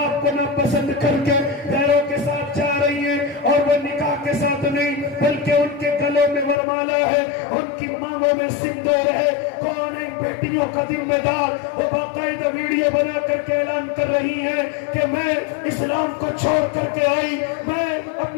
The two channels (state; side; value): drops out; right; at 6.6 s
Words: آپ کو ناپسند کر کے غیروں کے ساتھ جا رہی ہیں. اور وہ نکاح کے ساتھ نہیں بلکہ ان کے گلوں میں ورمالا ہے، ان کی مانگوں میں سندور ہے. کون ہے بیٹیوں کا ذمہ دار؟ وہ باقاعدہ ویڈیو بنا کر کے اعلان کر رہی ہے کہ میں اسلام کو چھوڑ کر کے آئی، میں